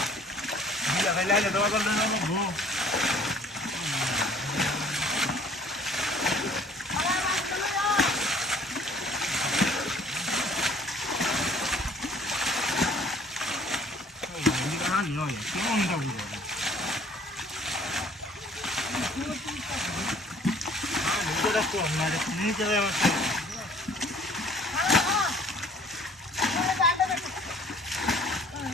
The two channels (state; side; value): normal; both; correlation 0.54